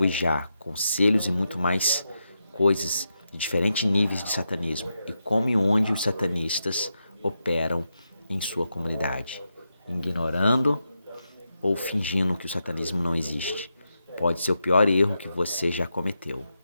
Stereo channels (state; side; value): inverted; both; correlation -0.86